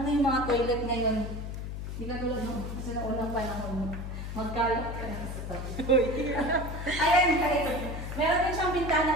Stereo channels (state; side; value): noise; left; hum, 6 dB below the sound